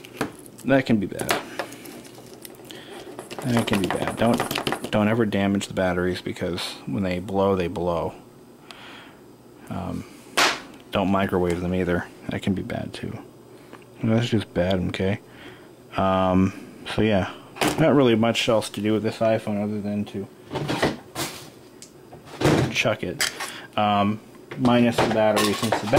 can be bad. That can be bad. Don't ever damage the batteries because when they blow, they blow. Don't microwave them either. That can be bad too. That's just bad, okay? So yeah, not really much else to do with this iPhone other than to chuck it. Minus the battery. Since the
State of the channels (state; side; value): identical; both; correlation 1.00